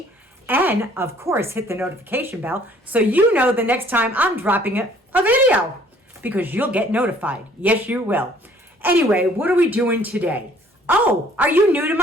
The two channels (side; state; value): both; normal; correlation 0.58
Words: and of course hit the notification bell so you know the next time I'm dropping a video, because you'll get notified. Yes, you will. Anyway, what are we doing today? Oh, are you new to